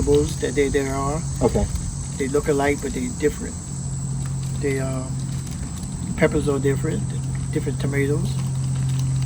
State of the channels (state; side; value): identical; both; correlation 1.00